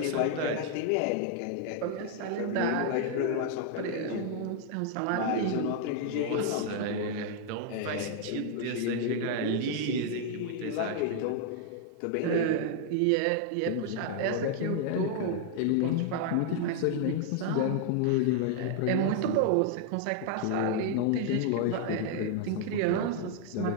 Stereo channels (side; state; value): both; different; correlation 0.00